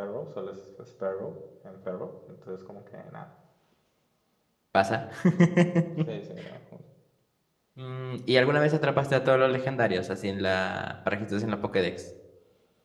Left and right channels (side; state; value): both; identical; correlation 1.00